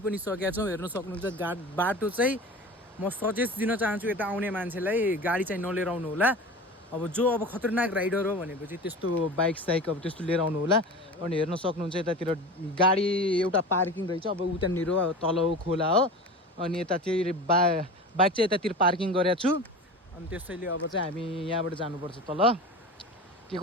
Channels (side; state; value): both; normal; correlation 0.33